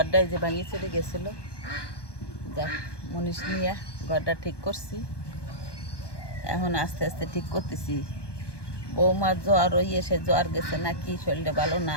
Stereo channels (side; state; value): right; late; 1.2 ms